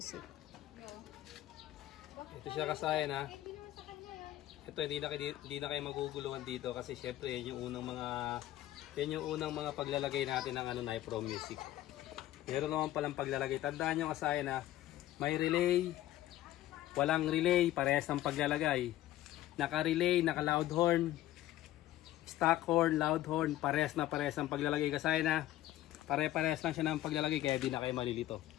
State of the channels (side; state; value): right; quieter; 14.5 dB